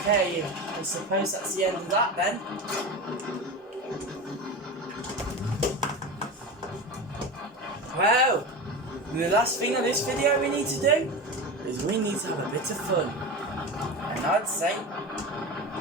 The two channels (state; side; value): normal; both; correlation 0.26